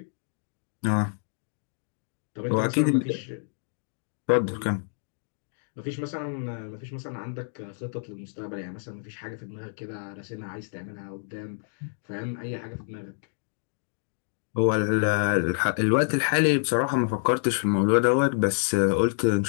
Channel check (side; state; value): right; silent; digital silence